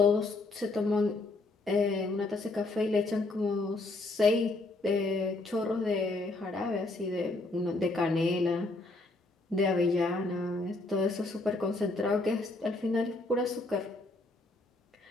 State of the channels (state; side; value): quieter; right; 3.1 dB